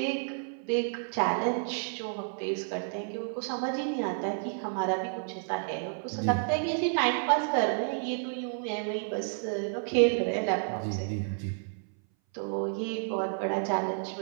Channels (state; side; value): silent; left; 57 dB below the other